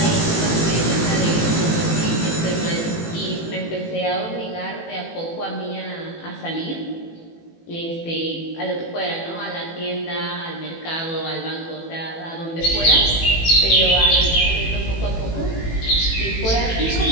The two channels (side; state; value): right; late; 18 ms